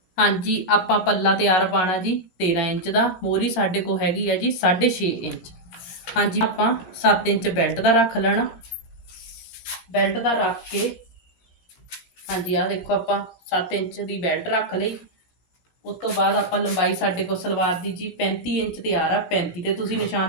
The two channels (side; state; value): right; late; 16 ms